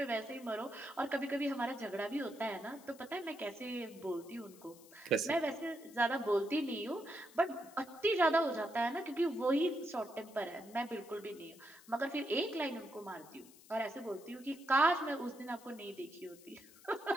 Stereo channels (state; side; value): noise; left; hiss, 22 dB below the sound